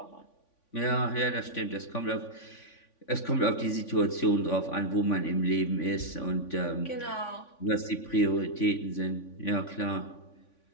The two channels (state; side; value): late; right; 3.5 ms